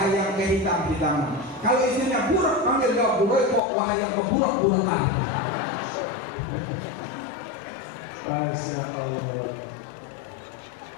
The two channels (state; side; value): drops out; right; at 3.6 s